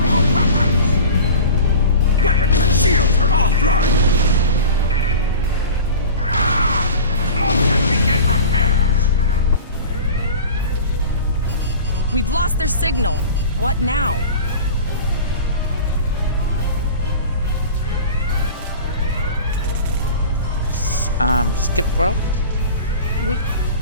all weapons! Weapons and shields are offline! Close and begin repairs! We've lost their signal. What now? Skip rope?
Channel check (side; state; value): both; inverted; correlation -0.37